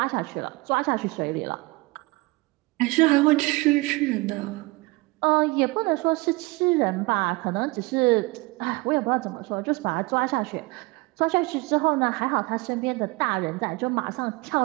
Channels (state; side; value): quieter; left; 24.0 dB